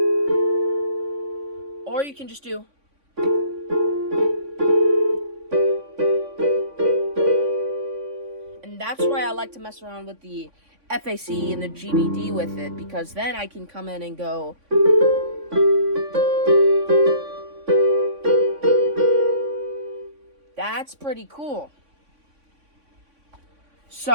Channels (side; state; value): left; late; 3.5 ms